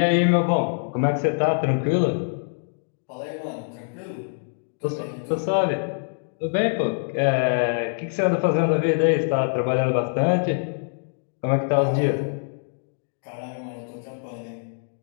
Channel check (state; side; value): silent; right; digital silence